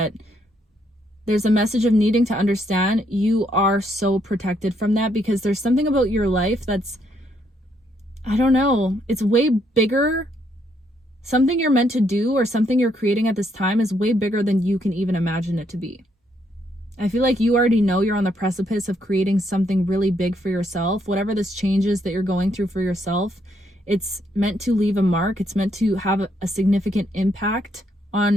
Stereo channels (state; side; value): normal; both; correlation 0.73